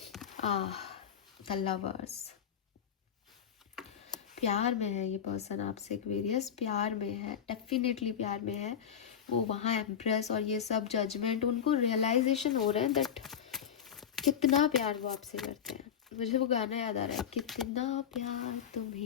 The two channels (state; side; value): quieter; right; 8.4 dB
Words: The lovers, प्यार में है ये पर्सन आपसे, एक्वेरियस प्यार में है, डेफिनेटली प्यार में है। वो वहाँ एम्प्रेस और ये सब जजमेंट, उनको रियलाइजेशन हो रहा है दैट कितना प्यार वो आपसे करते हैं। मुझे वो गाना याद आ रहा है, कितना प्यार